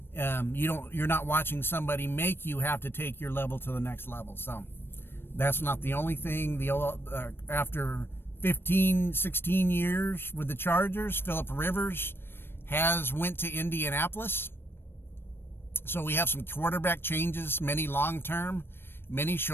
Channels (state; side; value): late; right; 0.11 ms